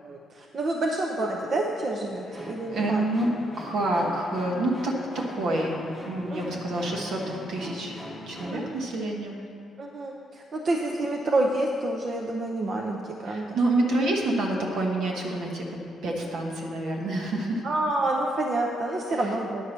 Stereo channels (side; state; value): both; normal; correlation 0.77